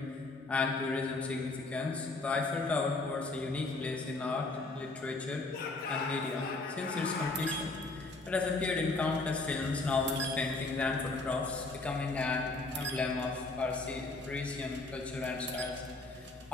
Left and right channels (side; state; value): right; quieter; 3.3 dB